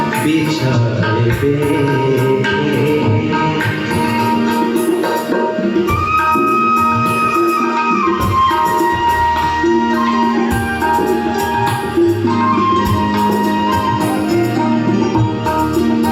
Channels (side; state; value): both; identical; correlation 1.00